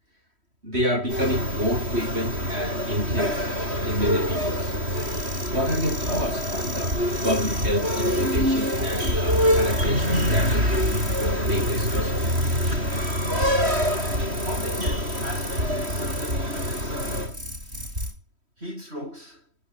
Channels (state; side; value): late; left; 3.1 ms